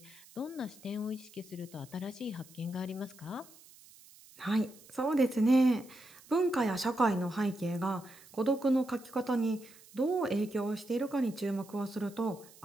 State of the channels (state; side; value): noise; right; hiss, 23 dB below the sound